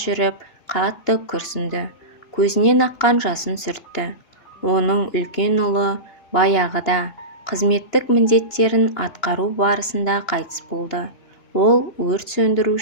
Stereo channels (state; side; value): late; right; 2.9 ms